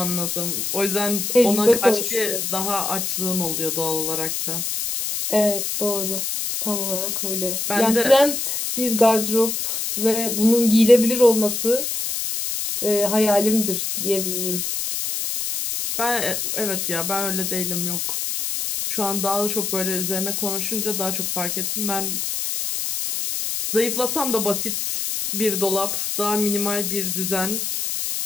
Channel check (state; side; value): noise; left; hiss, 2 dB below the sound